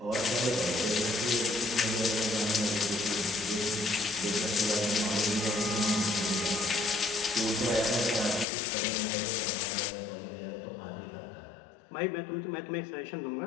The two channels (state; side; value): drops out; right; at 8.5 s